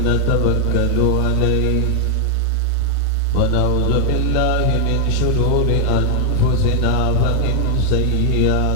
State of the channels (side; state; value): both; different; correlation 0.00